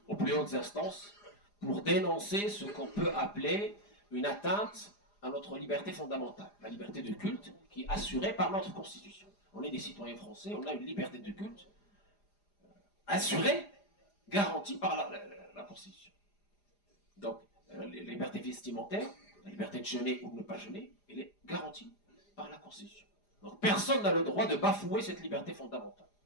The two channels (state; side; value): late; right; 4.9 ms